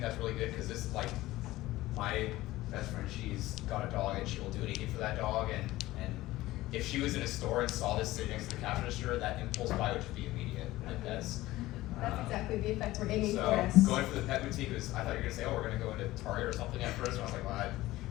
that's really good because this is like my best friend, she's got a dog and she will do anything for that dog, and if she was in a store and saw this sitting next to the cash register, that impulse buy would just be immediate. Like That's exactly the effect we're aiming so for. going for the pet boutique was, I thought you were gonna say, oh, we're gonna go into Target or something at first, and I was like, well, I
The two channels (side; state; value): right; quieter; 17.2 dB